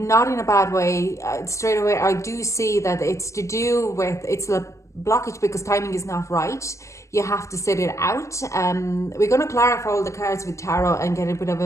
in a bad way. Straight away, I do see that it's to do with, it's a blockage because timing is not right. You have to sit it out. We're going to clarify all the cards with tarot and get a bit of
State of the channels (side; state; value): right; late; 0.14 ms